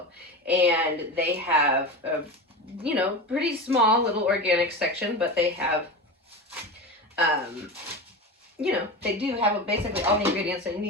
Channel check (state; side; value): normal; both; correlation 0.25